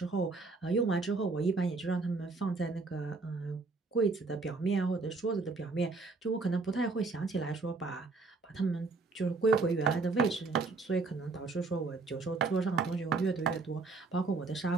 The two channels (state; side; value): quieter; left; 3.9 dB